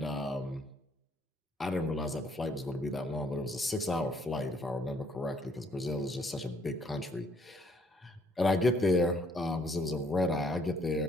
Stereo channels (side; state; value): both; normal; correlation 0.65